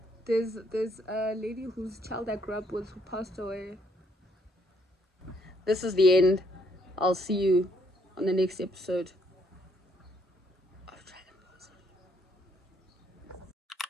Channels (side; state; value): both; normal; correlation 0.69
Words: there's a lady whose child I grew up with who passed away. This is the end. I'll see you on the next episode.